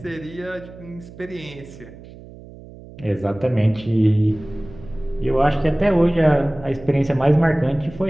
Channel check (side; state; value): right; noise; hum, 18 dB below the sound